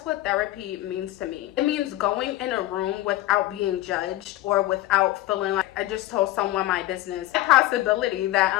what therapy means to me. It means going in a room without being judged or without feeling like I just told someone my business. The possibility that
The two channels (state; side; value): quieter; right; 16.4 dB